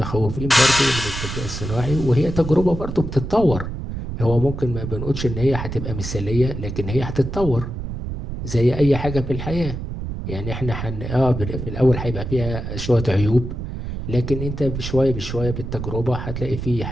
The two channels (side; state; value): right; noise; rumble, 6 dB below the sound